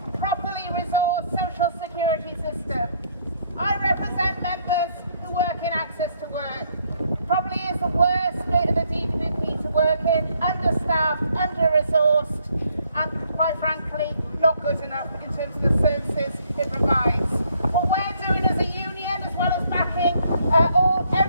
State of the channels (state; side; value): inverted; both; correlation -0.67